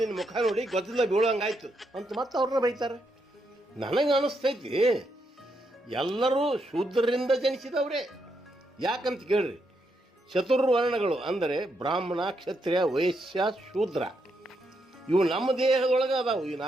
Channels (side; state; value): both; normal; correlation 0.80